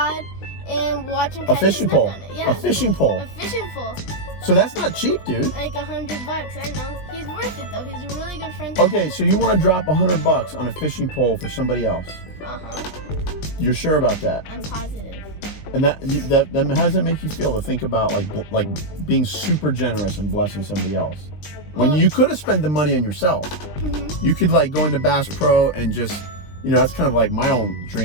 and watch him catch fishing snook pole. on it. Yeah. A fishing pole. A fishing pole. So that's not cheap, dude. Like $100, I know. He's worth it though. He's a really good friend. Okay, so you want to drop $100 on a fishing pole for somebody else? You're sure about that? I'm positive. And that how does it make you feel to think about like being super generous and blessing somebody else? When you could have spent the money on yourself. You could like go into Bass Pro and just, that's kind of like my own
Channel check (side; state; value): right; late; 19 ms